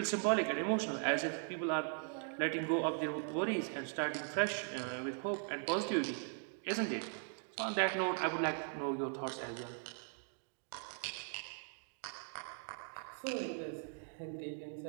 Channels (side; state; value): left; silent; 51 dB below the other